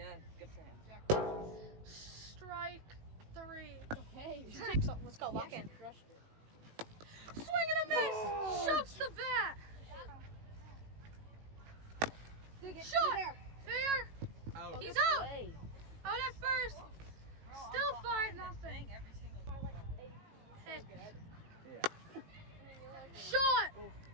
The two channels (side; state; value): left; late; 18 ms